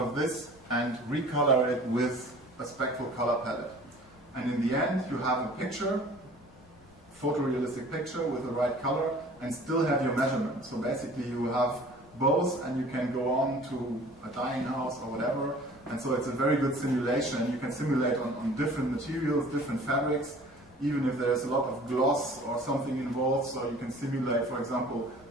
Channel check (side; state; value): left; noise; rumble, 28 dB below the sound